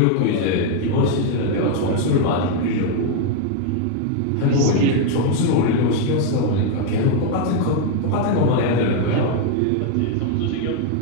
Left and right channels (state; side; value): different; both; correlation 0.00